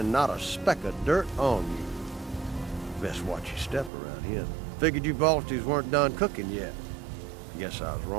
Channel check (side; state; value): left; drops out; at 3.9 s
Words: not a speck of dirt on you. Best watch your step around here. Figured you Balties weren't done cooking yet. Guess I was